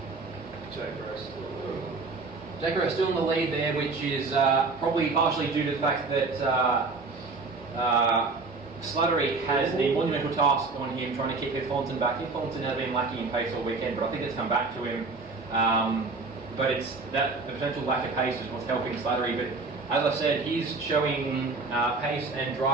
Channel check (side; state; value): left; quieter; 3.9 dB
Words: Jake Rowe still in the lead there, which is probably partially due to the fact that Slattery has the monumental task on him trying to keep Heath Collinson back. Heath Collinson has been lacking in pace all weekend, but I think it's come back to him. But it's that the potential lack of pace is what's helping Slattery. But as I said, he's showing pace and